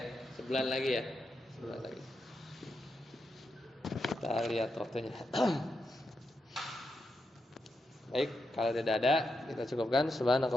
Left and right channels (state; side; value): normal; both; correlation 0.85